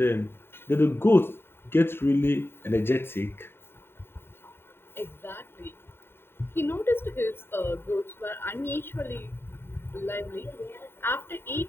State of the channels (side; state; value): right; late; 0.11 ms